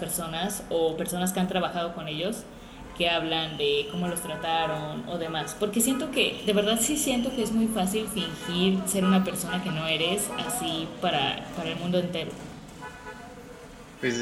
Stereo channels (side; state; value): both; identical; correlation 1.00